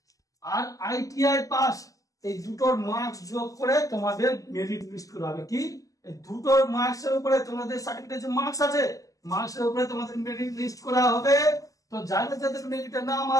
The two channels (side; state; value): right; late; 0.17 ms